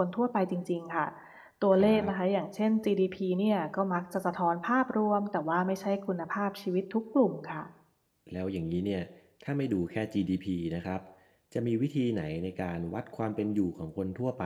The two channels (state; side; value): identical; both; correlation 1.00